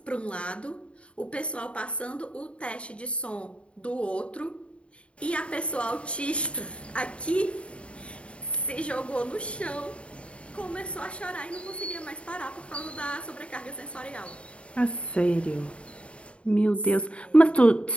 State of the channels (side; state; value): right; late; 0.060 ms